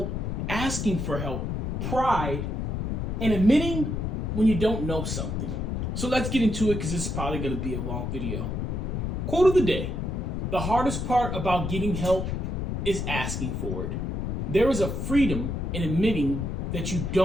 asking for help, pride, and admitting when you don't know something. So let's get into it because this is probably going to be a long video. Quote of the day: the hardest part about getting help is asking for it. There is a freedom in admitting that you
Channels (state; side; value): noise; left; rumble, 2 dB below the sound